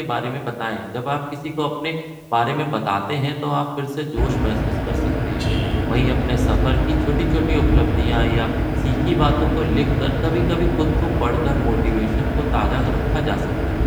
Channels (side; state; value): both; identical; correlation 1.00